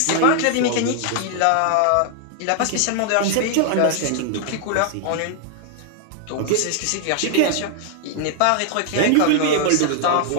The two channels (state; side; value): different; both; correlation 0.00